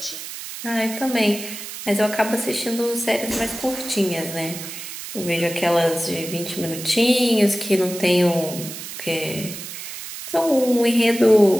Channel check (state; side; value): noise; right; hiss, 10 dB below the sound